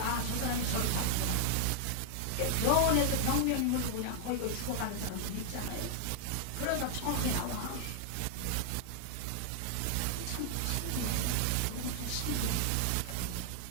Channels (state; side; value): different; both; correlation -0.01